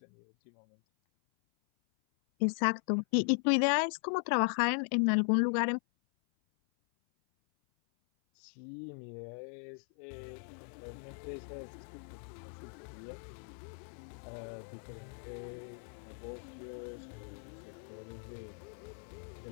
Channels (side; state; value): right; silent; 53 dB below the other